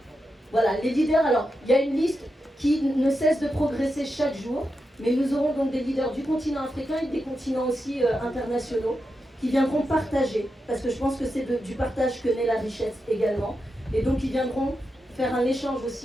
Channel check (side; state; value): both; normal; correlation 0.88